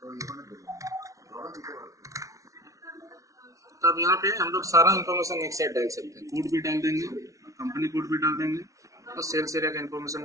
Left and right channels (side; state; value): left; late; 0.16 ms